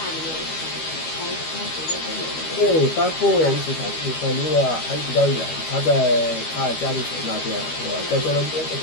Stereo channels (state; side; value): late; right; 13 ms